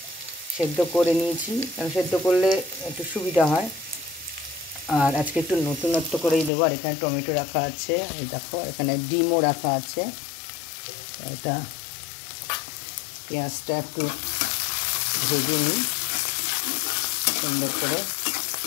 কারণ সেদ্ধ করলে একটু সুবিধা হয়। আর আজকে একটু নতুনত্ব করেই দেবো। আর এখানে টমেটো রাখা আছে, এই দেখো এখানে ডিমও রাখা আছে। এটা পেঁয়াজটা একটু ভেজে নিই সুন্দর করে।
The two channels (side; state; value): right; drops out; at 6.5 s